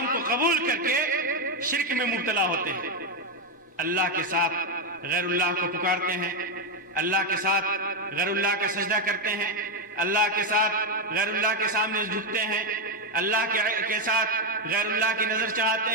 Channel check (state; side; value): normal; both; correlation 0.05